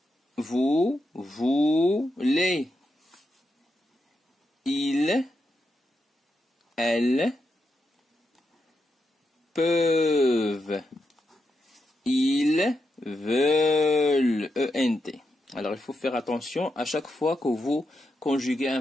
vous voulez, il, elles, peuvent, ils veulent, ENT. Alors il faut faire attention à chaque fois que vous conjuguez un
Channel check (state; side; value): normal; both; correlation 0.85